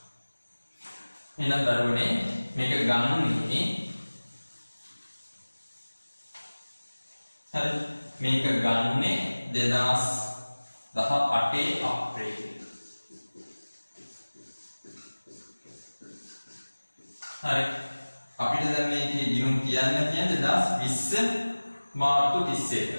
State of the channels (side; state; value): both; inverted; correlation -1.00